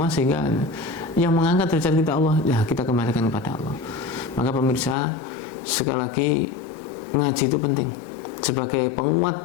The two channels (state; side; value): drops out; right; at 5.0 s